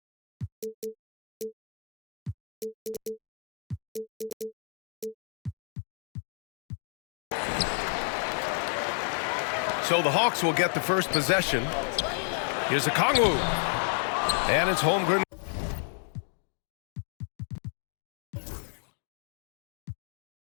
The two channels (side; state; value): right; drops out; at 5.6 s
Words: So the Hawks will get the first possession. Here's Okongwu. And it's Holmgren.